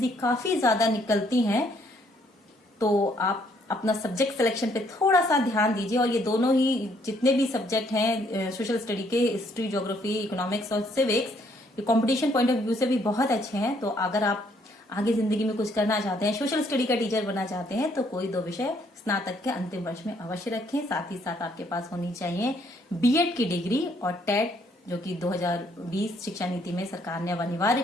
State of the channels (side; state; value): both; normal; correlation 0.67